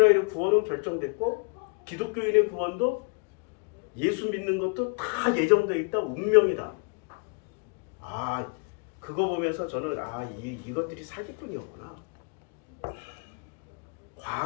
구원은 결정됐고 기독교인의 구원도 예수 믿는 것도 다 예정되어 있다. 운명이다. 그거 보면서 저는 이것들이 사기꾼이었구나.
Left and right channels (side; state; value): right; quieter; 37.5 dB